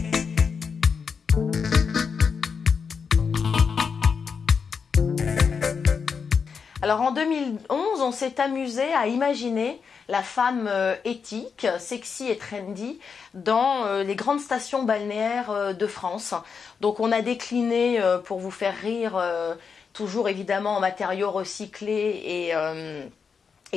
Alors en 2011, on s'est amusé à imaginer la femme éthique, sexy et trendy dans les grandes stations balnéaires de France. Donc on a décliné, pour vous faire rire, toujours évidemment en matériaux recyclés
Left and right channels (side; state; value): right; quieter; 5.9 dB